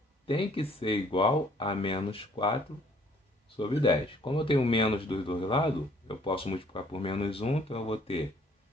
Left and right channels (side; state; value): both; normal; correlation 0.61